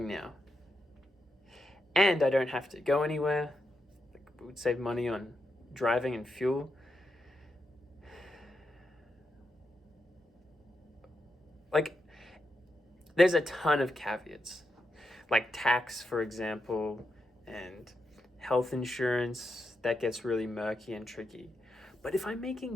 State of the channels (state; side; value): normal; both; correlation 0.85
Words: now. And I don't have to go anywhere. Like, it would save money on driving and fuel. Like, there's a ton of caveats. Like tax, for example, and health insurance, that gets really murky and tricky. But if I'm